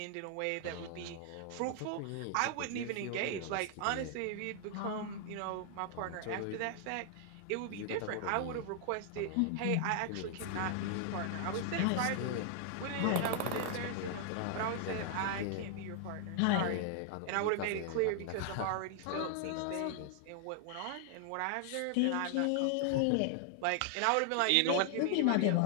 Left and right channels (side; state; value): both; different; correlation 0.00